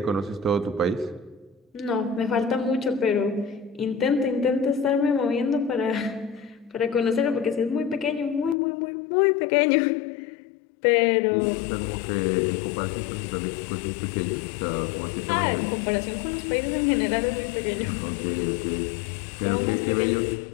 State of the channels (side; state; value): right; drops out; at 8.6 s